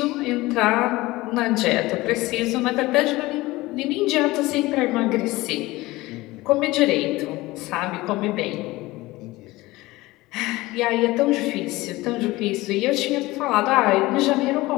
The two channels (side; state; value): right; quieter; 19.6 dB